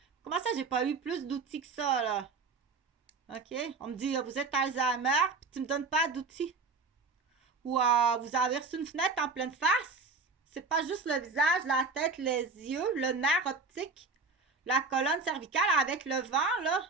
Comment ça, j'ai pas eu plus d'outils que ça, là? OK? On me dit, vous êtes Alzheimer, puis tu me donnes pas d'outils. Ou vous avez reçu une fenêtre en pleine face. C'est pas juste le visage, la tête, les yeux, le nerf optique, la colonne cervicale avec le vent, là.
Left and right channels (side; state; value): left; quieter; 4.2 dB